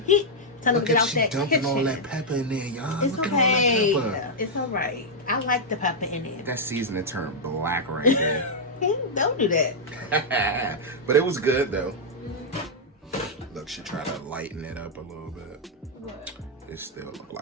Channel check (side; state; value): both; normal; correlation -0.05